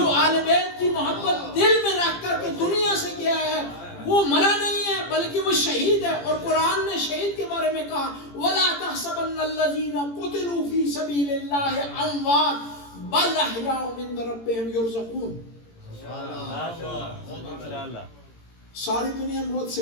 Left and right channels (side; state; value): right; late; 18 ms